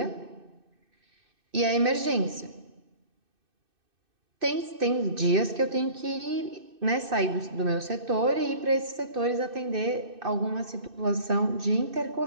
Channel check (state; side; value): late; left; 2.6 ms